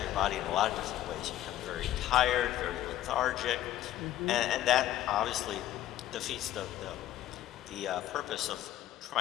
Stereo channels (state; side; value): quieter; right; 13.1 dB